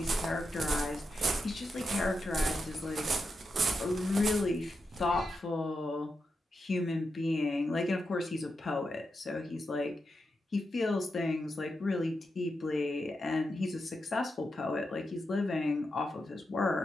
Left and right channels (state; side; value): normal; both; correlation 0.87